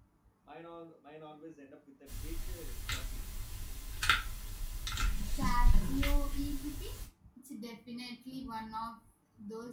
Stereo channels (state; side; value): identical; both; correlation 1.00